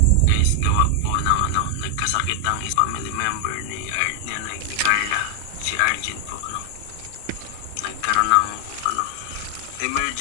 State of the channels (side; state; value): both; different; correlation 0.00